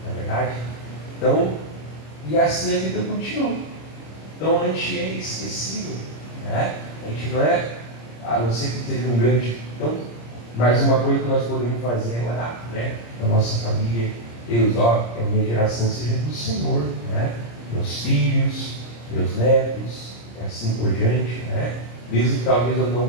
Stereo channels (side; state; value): right; late; 26 ms